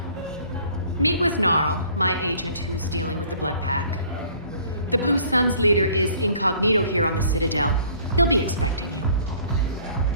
Meet with Gnarl, my agent who's dealing with the Blood Pack. The Blue Suns leader is incognito here on the Citadel. He'll be expecting you.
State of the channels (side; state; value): both; inverted; correlation -0.54